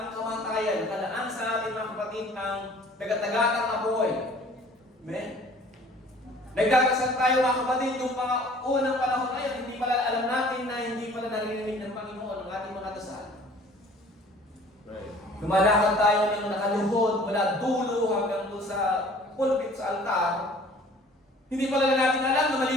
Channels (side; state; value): both; normal; correlation 0.51